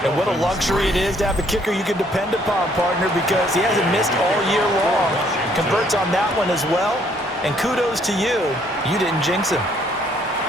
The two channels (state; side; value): normal; both; correlation 0.65